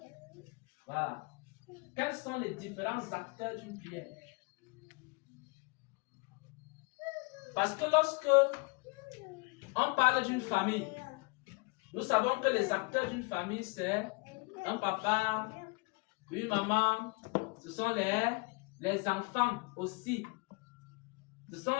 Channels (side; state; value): right; quieter; 29.2 dB